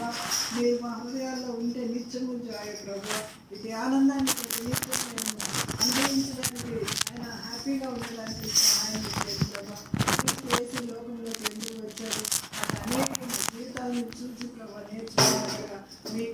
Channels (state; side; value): identical; both; correlation 1.00